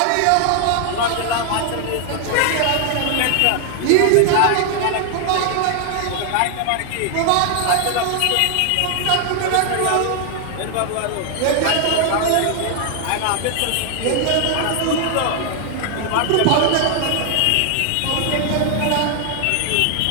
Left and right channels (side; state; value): both; different; correlation 0.00